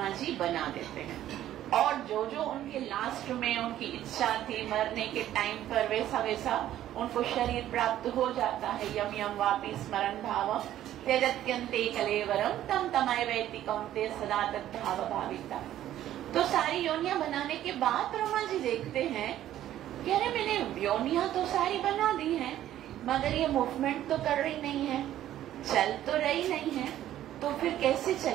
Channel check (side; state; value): left; quieter; 12.5 dB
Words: जी बना देते हैं। और जो जो उनके लास्ट में उनकी इच्छा थी मरने के टाइम पर वैसा वैसा उनको शरीर प्राप्त हो जाता है। यम यम वापि स्मरण भावम त्यजत्यन्ते कलेवरम तम तमय वैति कौन्तेय सदा तद्भाव भाविता। तो सारी योनियां बनाने के बाद ब्रह्मा जी देखते हैं कि अरे मैंने योनियां तो सारी बना दी हैं, मगर ये मूवमेंट तो कर रही नहीं है, चल तो रही नहीं है, तो फिर कैसे